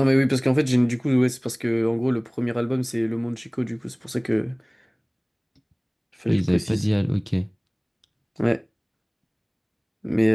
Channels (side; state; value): both; identical; correlation 1.00